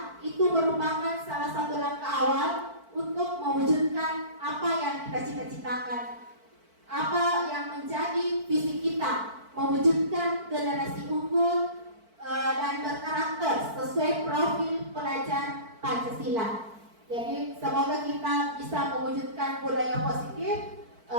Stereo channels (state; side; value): late; left; 4.5 ms